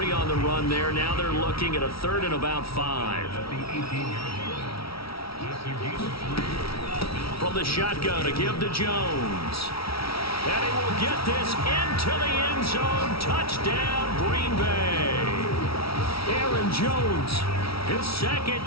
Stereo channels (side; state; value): right; late; 0.75 ms